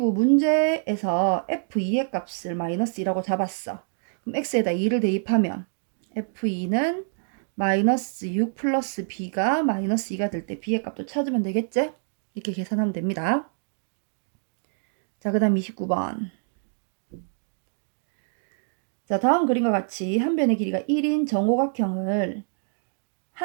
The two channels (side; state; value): left; silent; digital silence